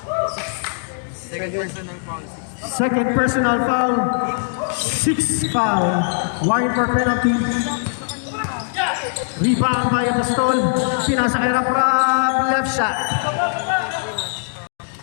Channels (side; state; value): right; silent; digital silence